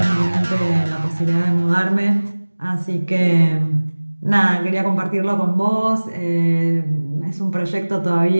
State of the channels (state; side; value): inverted; both; correlation -1.00